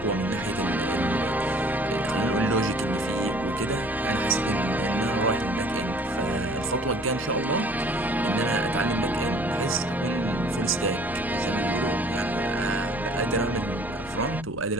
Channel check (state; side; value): noise; left; rumble, 17 dB below the sound